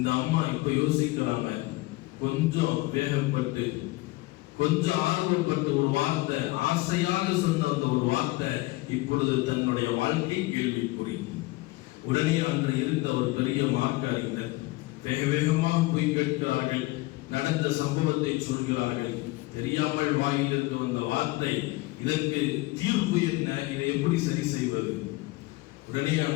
அம்மா இப்ப யோசிக்கிறாங்க, கொஞ்சம் வேகப்பட்டு கொஞ்சம் ஆர்வப்பட்டு ஒரு வார்த்தை, ஆசையாக சொன்ன அந்த ஒரு வார்த்தை இப்பொழுது தன்னுடைய வாழ்க்கை கேள்விக்குறி. உடனே அன்று இருந்த ஒரு பெரிய மார்க்க அறிஞர் வேக வேகமாக போய் கேட்கிறார்கள், நடந்த சம்பவத்தை சொல்கிறார்கள். தெரியாமல் வாயிலிருந்து வந்த வார்த்தை, இதற்கு தீர்ப்பு என்ன, இதை எப்படி சரி செய்வது? உடனே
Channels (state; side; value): quieter; right; 21.0 dB